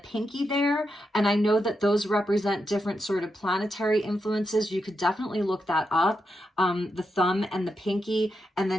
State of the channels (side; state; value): both; normal; correlation 0.85